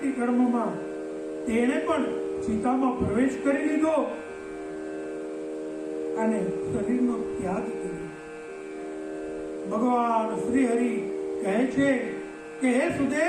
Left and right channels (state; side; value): identical; both; correlation 1.00